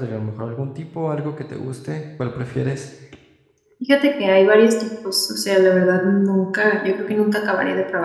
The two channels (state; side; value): identical; both; correlation 1.00